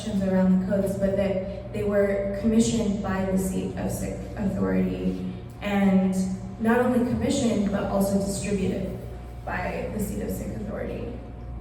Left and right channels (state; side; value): identical; both; correlation 1.00